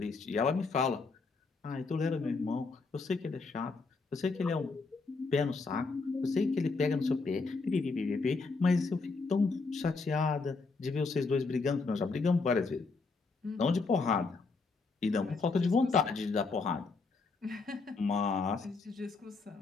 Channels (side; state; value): right; quieter; 4.1 dB